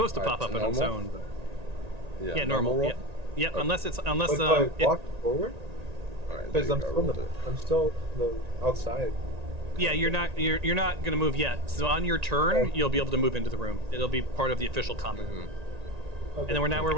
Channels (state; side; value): late; left; 1.9 ms